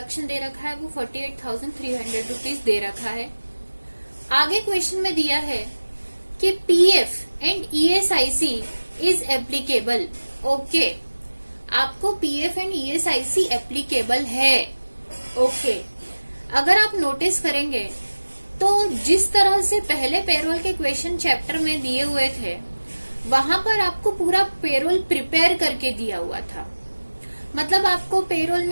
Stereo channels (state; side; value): inverted; both; correlation -1.00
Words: दे रखा है वो 48,300 रुपीज दे रखा है. आगे क्वेश्चन में दिया है कि PF and ESIC is applicable. Okay, आपको PF एंड ESIC एप्लीकेबल है. ओके, अगर आप नोटिस करेंगे तो जिस तरह से पहले पेरोल के क्वेश्चन चैप्टर में दिए हुए थे वहां पर आपको पूरा पेरोल प्रिपेयर करके दिया हुआ था. मतलब आपको पेरोल